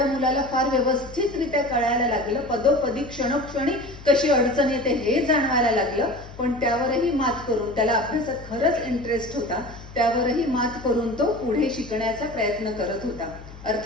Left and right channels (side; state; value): left; noise; hum, 17 dB below the sound